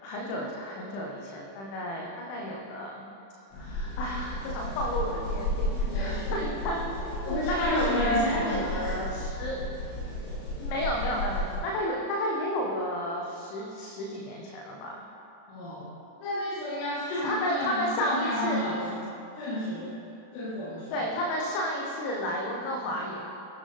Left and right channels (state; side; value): late; right; 36 ms